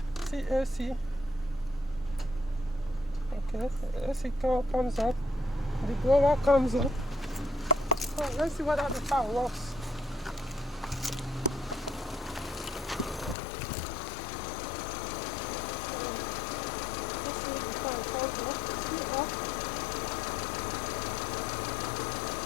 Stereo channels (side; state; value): right; drops out; at 13.4 s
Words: CAC. Okay, AC comes up. the blower comes on. So let's see whether the car works. Let's see if the car is on. See off.